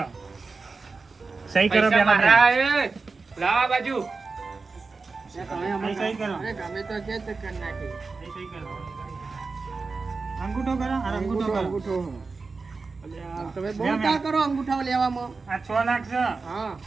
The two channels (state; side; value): quieter; left; 4.2 dB